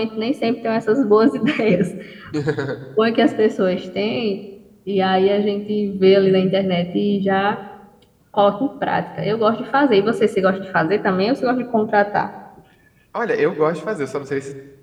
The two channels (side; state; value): both; identical; correlation 1.00